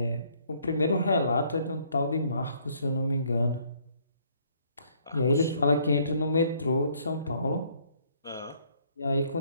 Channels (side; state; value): both; inverted; correlation -0.65